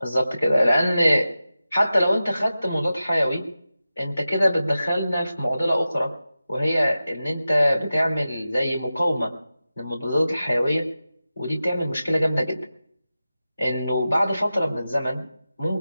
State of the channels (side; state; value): both; inverted; correlation -0.93